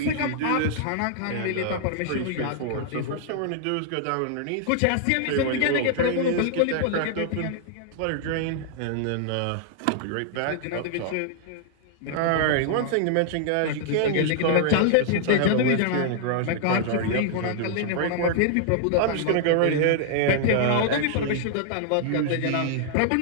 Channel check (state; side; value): different; both; correlation -0.01